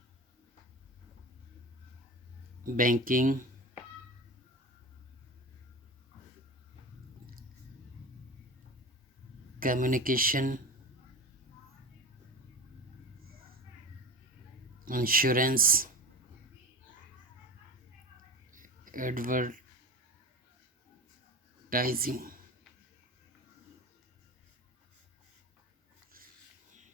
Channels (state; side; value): normal; both; correlation 0.30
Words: banking, communication, insurance, advertising.